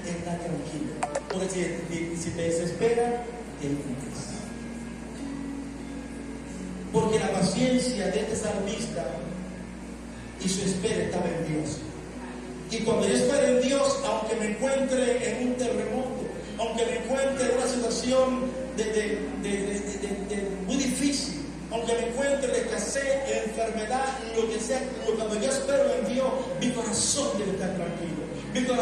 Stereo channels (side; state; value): both; identical; correlation 1.00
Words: está tranquilo. Porque si te desespera, te hundes. Porque la paciencia de este salmista y su espera estaba en Dios. Y cuando yo espero en Dios, aunque me encuentre en un terremoto, aunque me encuentre en una situación muy difícil, aunque me encuentre en escasez, en enfermedad, lo que sea, cuando yo espero en Dios, mi corazón debe estar tranquilo, mi